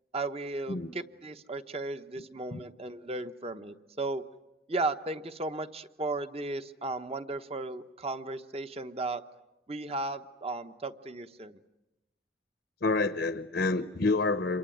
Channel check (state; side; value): normal; both; correlation 0.31